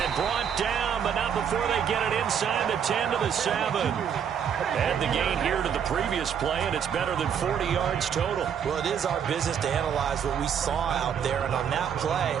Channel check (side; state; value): left; quieter; 8.1 dB